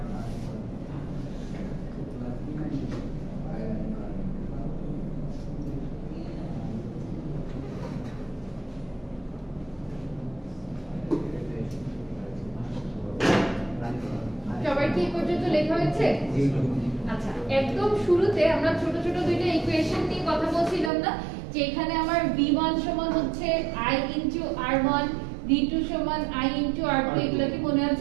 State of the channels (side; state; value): left; drops out; at 20.9 s